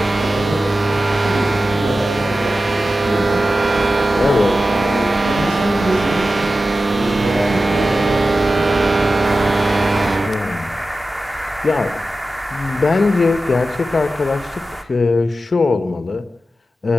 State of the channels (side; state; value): both; normal; correlation 0.93